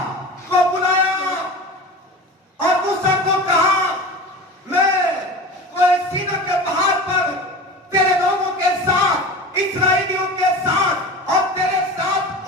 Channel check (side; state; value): both; normal; correlation 0.33